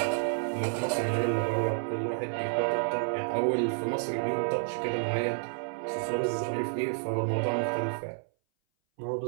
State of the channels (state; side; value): silent; left; 58 dB below the other